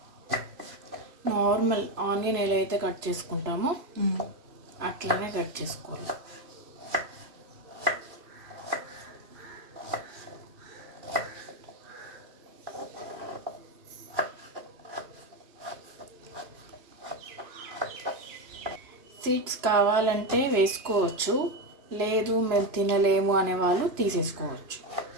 నార్మల్ ఆనియన్ ఎలా అయితే కట్ చేసుకుంటామో అట్లనే కట్ చేసుకోవాలి. సీడ్స్ కావాలంటే వేసుకోవచ్చు, లేదు మేము తినలేము అనేవాళ్ళు తీసేసుకోవచ్చు.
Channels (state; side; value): late; left; 3.0 ms